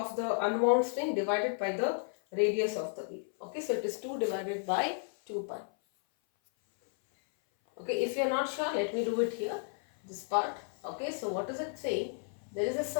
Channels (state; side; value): silent; right; 56 dB below the other